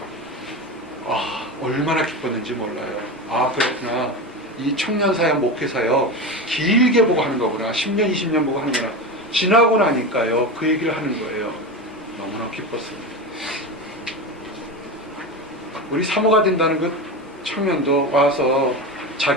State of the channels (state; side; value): normal; both; correlation 0.22